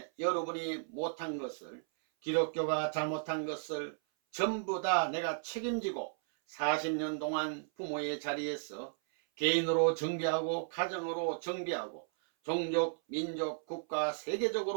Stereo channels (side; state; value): left; silent; 55 dB below the other